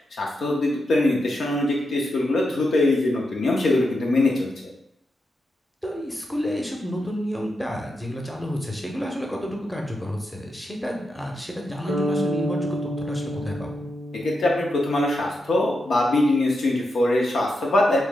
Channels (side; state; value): both; normal; correlation 0.86